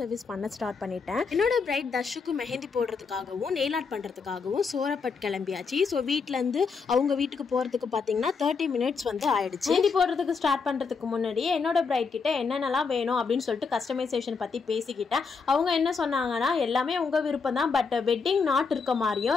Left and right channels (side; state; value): right; quieter; 5.1 dB